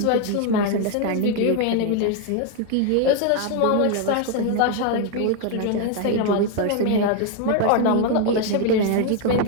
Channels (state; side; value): different; both; correlation 0.01